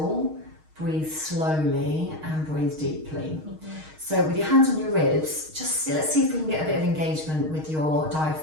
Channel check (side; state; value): left; late; 6.4 ms